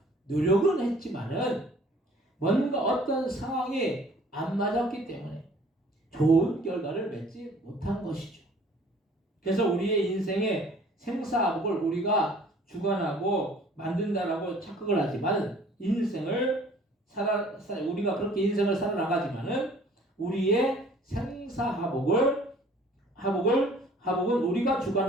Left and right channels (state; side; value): normal; both; correlation 0.53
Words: 노력은 했지만은 뭔가 어떤 상황이 안 맞았기 때문에 좋은 결과를 맺지 못한 것이죠. 그래서 우리의 인생의 생사복을 우리가 주관하고 만든다라고 착각을 하지만 우리가 그렇게 인생을 살아나가지만은 우리의 생사하복을 화복은 우리가